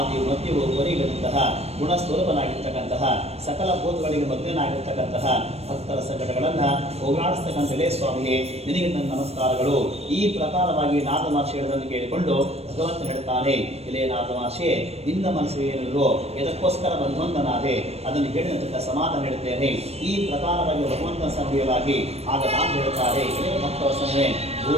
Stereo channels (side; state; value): left; late; 0.30 ms